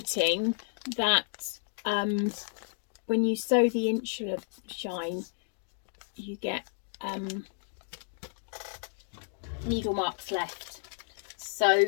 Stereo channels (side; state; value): right; silent; digital silence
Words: that when you sew the insular shine, you get needle marks left. So